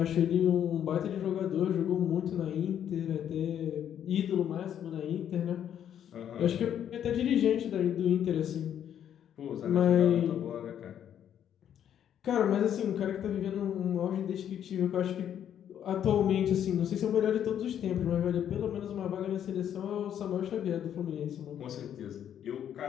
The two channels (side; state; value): right; quieter; 9.7 dB